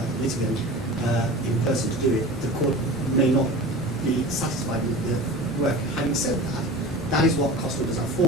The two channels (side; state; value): both; normal; correlation 0.34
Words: litigant in person to do it, the court may not be satisfied with the work. Having said that, that is what cost orders are